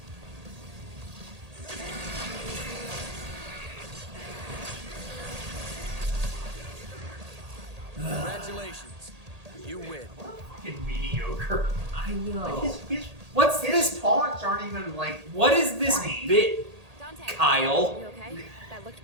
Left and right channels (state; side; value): late; left; 1.8 ms